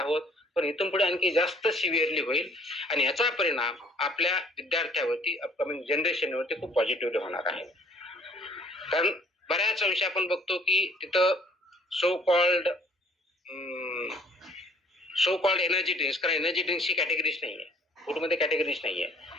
पण इथून पुढे आणखी जास्त सिव्हिअरली होईल आणि याचा परिणाम आपल्या विद्यार्थ्यावरती अपकमिंग जनरेशनवरती खूप पॉझिटिव्हली होणार आहे. कारण बऱ्याच अंशी आपण बघतो की तिथं सो कॉल्ड एनर्जी ड्रिंक्स, कारण एनर्जी ड्रिंक्सची कॅटेगरीज नाहीये, फूडमध्ये कॅटेगरीज नाहीये.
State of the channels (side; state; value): both; normal; correlation 0.57